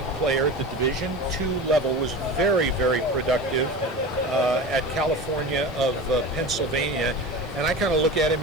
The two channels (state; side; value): noise; right; hiss, 29 dB below the sound